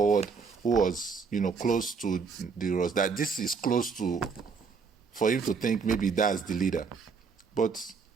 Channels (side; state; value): left; quieter; 5.2 dB